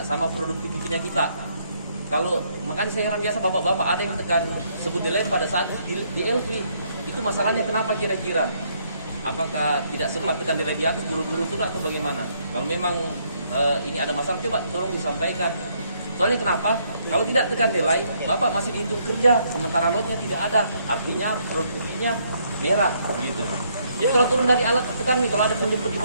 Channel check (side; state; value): both; inverted; correlation -0.71